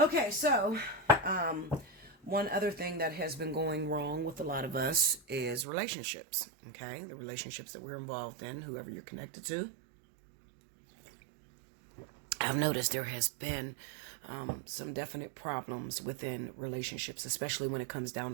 So, one other thing that has been going wrong with a lot of us is relationships. Okay. The relationships that we're involved in, whoever you're connected to. I've noticed there has been some definite problems within relationships, especially when it comes down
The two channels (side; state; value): left; drops out; at 5.7 s